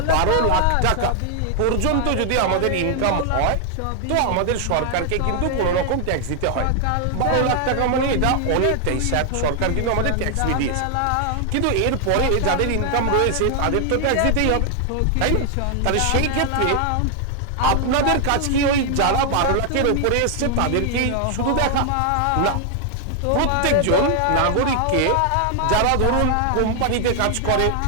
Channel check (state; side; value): different; both; correlation 0.00